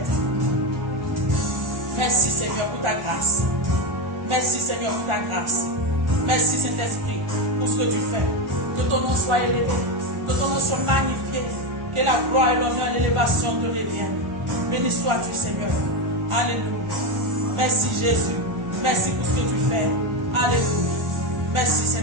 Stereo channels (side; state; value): left; late; 1.4 ms